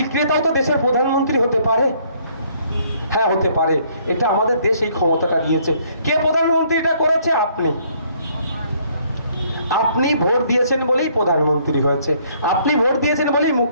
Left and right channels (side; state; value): both; inverted; correlation -0.65